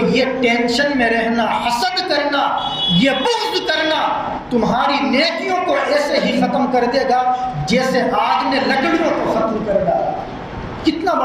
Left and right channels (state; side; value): identical; both; correlation 1.00